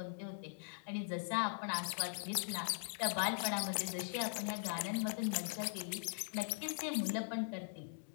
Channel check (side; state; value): right; silent; digital silence